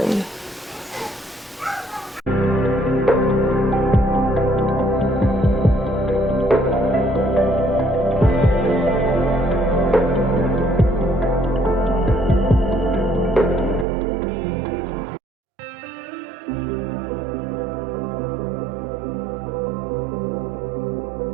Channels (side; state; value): left; drops out; at 13.9 s